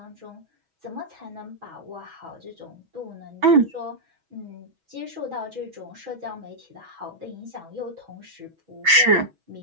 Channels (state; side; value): late; left; 6.2 ms